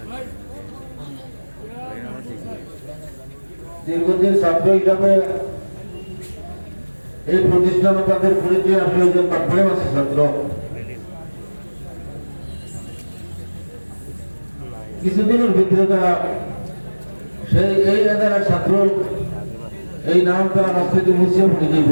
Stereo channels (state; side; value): inverted; both; correlation -1.00